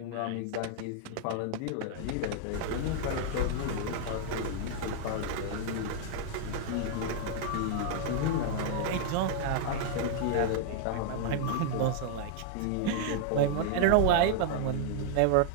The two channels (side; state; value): both; different; correlation -0.01